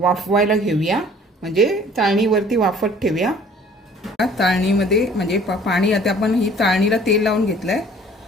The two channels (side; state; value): both; normal; correlation 0.53